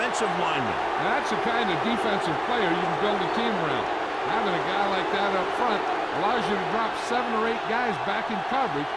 lineman. That's the kind of defensive player you can build a team around. Having a guy like that up front allows you to drop 7 or 8 guys back in coverage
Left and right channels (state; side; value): identical; both; correlation 1.00